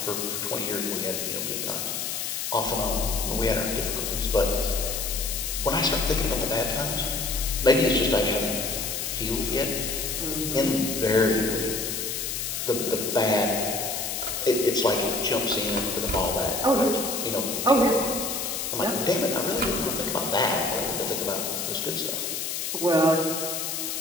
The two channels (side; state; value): left; noise; hiss, 3 dB below the sound